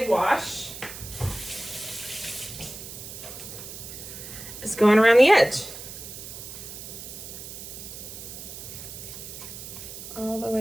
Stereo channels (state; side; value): noise; right; hiss, 11 dB below the sound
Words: wash is going around the edge. All the